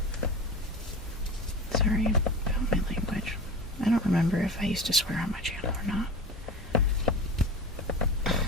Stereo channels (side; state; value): both; normal; correlation 0.31